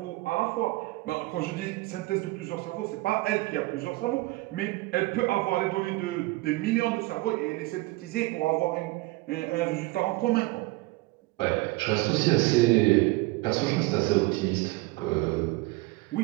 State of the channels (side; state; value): left; quieter; 21.7 dB